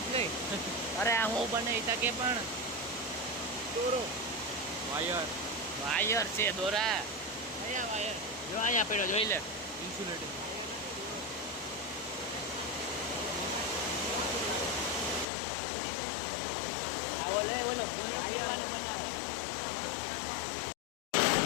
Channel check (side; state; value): right; drops out; at 15.2 s